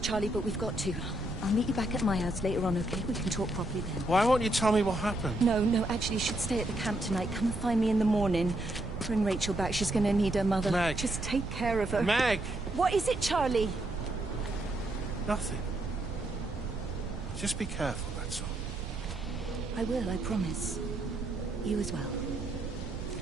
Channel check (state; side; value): noise; right; rumble, 8 dB below the sound